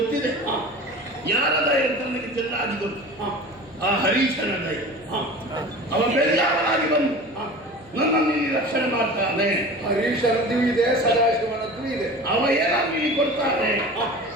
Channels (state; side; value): noise; left; hum, 27 dB below the sound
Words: ಯಾರ ದಯ ಅಂತ ನನಗೆ ಚೆನ್ನಾಗಿ ಗೊತ್ತು. ಆ ಹರೀಶನ ದಯ. ಅವ ಬೆಳ್ಳಾಗಿ ಬಂದು ನನ್ನನ್ನು ಇಲ್ಲಿ ರಕ್ಷಣೆ ಮಾಡ್ತಾನೆ. ಹರೀಶನದ್ದು ಇದೆ, ಸದಾಶಿವನದ್ದು ಇದೆ. ಅವ ಏನಾದ್ರು ಇಲ್ಲಿ ಕೊಡ್ತಾನೆ,